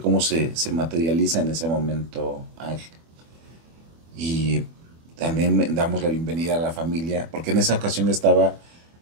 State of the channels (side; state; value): left; late; 24 ms